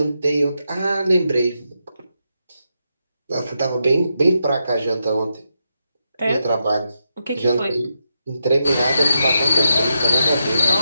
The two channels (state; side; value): inverted; both; correlation -0.84